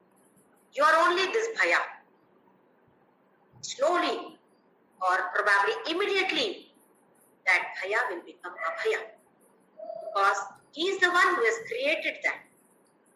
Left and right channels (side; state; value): both; identical; correlation 1.00